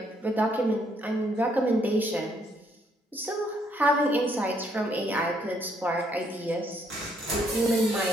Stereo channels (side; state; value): both; normal; correlation 0.70